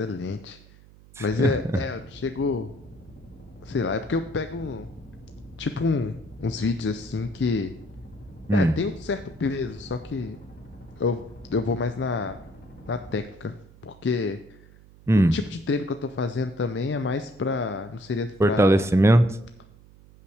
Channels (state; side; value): noise; right; hum, 24 dB below the sound